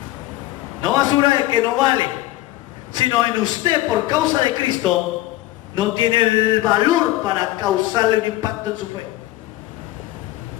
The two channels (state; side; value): quieter; right; 16.5 dB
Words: No basura de que no vale, sino en usted, por causa de Cristo, no tiene el valor para causarle un impacto en su fe.